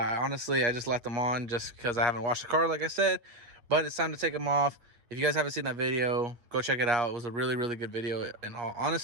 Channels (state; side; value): late; left; 8.4 ms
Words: I just left them on just because I haven't washed the car, like I said. But it's time to take them off. If you guys haven't seen that video, go check it out. It was a really good video, in all